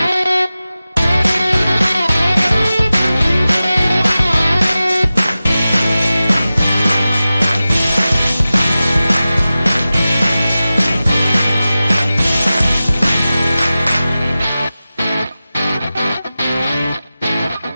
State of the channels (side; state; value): both; inverted; correlation -0.95